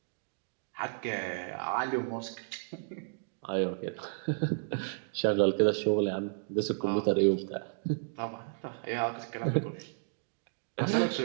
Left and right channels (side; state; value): left; silent; digital silence